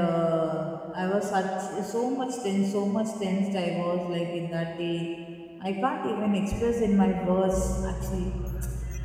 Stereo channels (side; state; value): both; identical; correlation 1.00